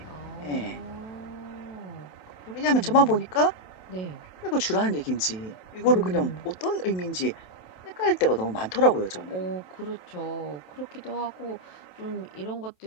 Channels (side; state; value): right; late; 27 ms